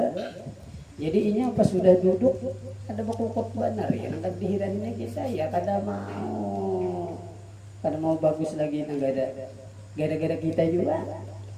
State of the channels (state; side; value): identical; both; correlation 1.00